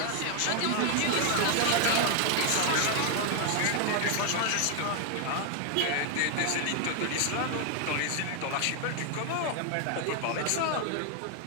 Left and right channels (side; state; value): both; different; correlation 0.00